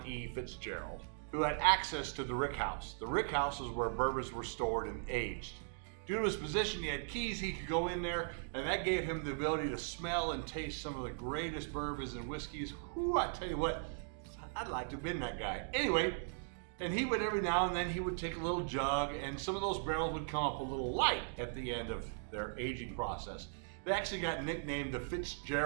E. Fitzgerald, who had access to the rick house. The rick house is where bourbons were stored and aged. Due to his position, he had keys, he could go in there, and that gave him the ability to smell and taste some of the greatest bourbons and whiskeys. Whoo, I tell you what, I'd like to have been that guy. Anyway, and he would every now and then, he would take a little jug, and some of those barrels would come up a little light at the end of their aging process. They actually got nicknamed the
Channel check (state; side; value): silent; left; digital silence